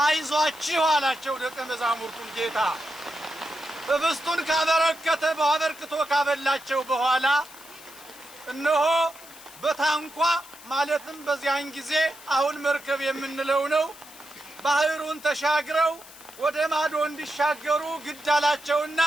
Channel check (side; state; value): left; noise; hiss, 19 dB below the sound